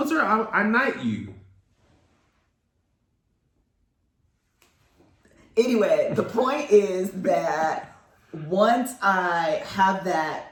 I knight you. Anyway, the point is that once I have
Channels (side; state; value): both; identical; correlation 1.00